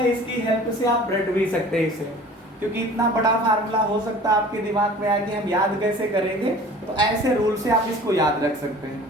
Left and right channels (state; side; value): normal; both; correlation 0.45